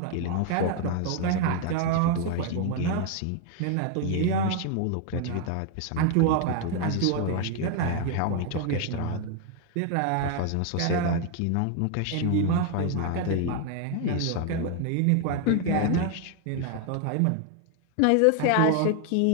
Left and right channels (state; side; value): different; both; correlation 0.00